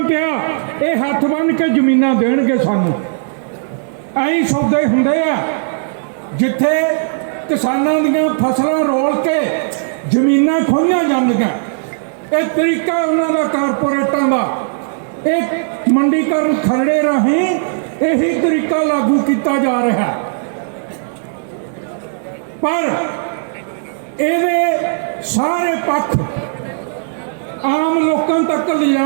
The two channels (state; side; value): silent; left; digital silence